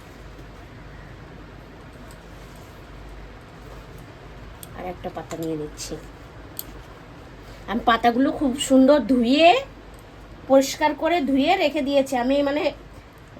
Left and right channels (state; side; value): identical; both; correlation 1.00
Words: আর একটা পাতা নিয়ে নিচ্ছি। আমি পাতাগুলো খুব সুন্দর ধুয়ে, পরিষ্কার করে ধুয়ে রেখে দিয়েছি। আমি মানে